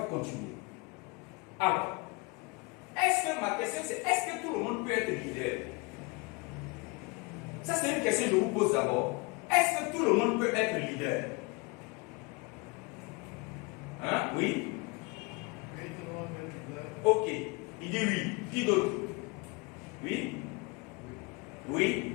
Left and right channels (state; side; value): quieter; right; 27.7 dB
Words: continuer. Alors, ma question c'est, est-ce que tout le monde peut être leader? Ça c'est une question que je vous pose d'abord. Est-ce que tout le monde peut être leader? Hein? Oui? Oui, tout le monde est leader. Ok. Il dit oui. Qui d'autre? Oui?